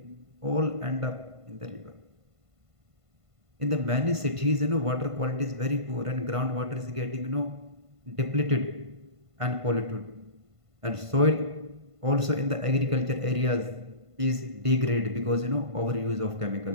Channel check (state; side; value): late; left; 1.5 ms